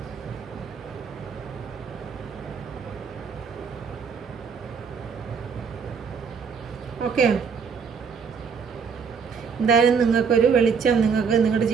ഓക്കെ, എന്തായാലും നിങ്ങൾക്കൊരു വെളിച്ചം, നിങ്ങളുടെ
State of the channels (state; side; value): quieter; left; 6.1 dB